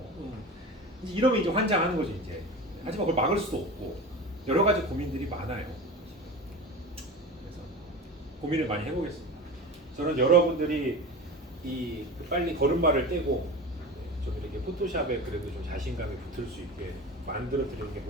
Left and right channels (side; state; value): both; normal; correlation 0.31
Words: 이제 이러면 이제 환장하는 거죠 이제. 하지만 그걸 막을 수도 없고 여러 가지 고민들이 많아요. 그래서 고민을 많이 해보겠습니다. 저는 여러분들이 이 빨리 걸음마를 떼고 좀 이렇게 포토샵에 그래도 좀 자신감이 붙을 수 있게 만들어 드리는 게